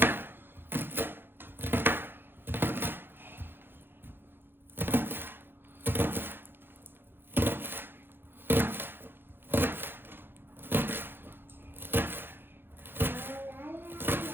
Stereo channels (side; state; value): left; late; 0.10 ms